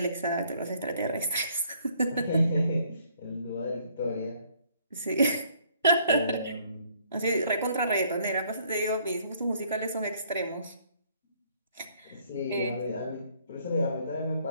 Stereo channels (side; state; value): both; inverted; correlation -0.64